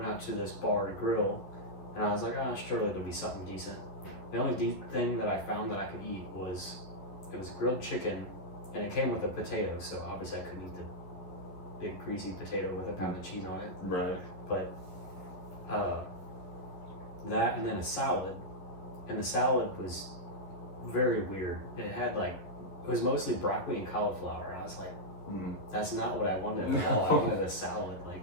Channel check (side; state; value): right; late; 11 ms